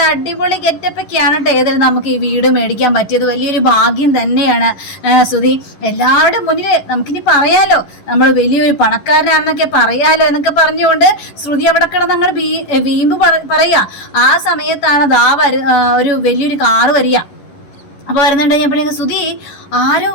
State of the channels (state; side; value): late; right; 11 ms